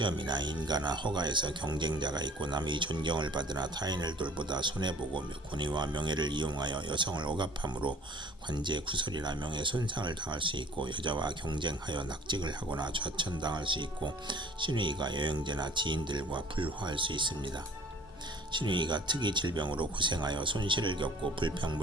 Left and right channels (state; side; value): normal; both; correlation 0.51